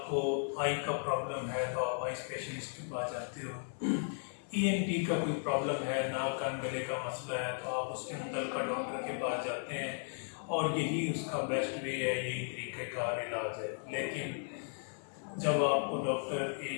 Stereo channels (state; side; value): silent; right; 54 dB below the other